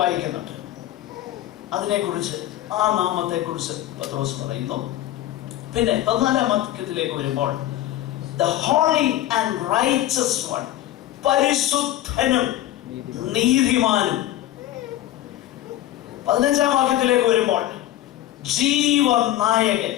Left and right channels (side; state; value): right; quieter; 13.8 dB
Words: അതിനെക്കുറിച്ച് ആ നാമത്തെ കുറിച്ച് പത്രോസ് പറയുന്നു. പിന്നെ 14-ാം വാക്യത്തിലേക്ക് വരുമ്പോൾ the holy and righteous one, പരിശുദ്ധനും നീതിമാനും. 15-ാം വാക്യത്തിലേക്ക് വരുമ്പോൾ ജീവനായകൻ,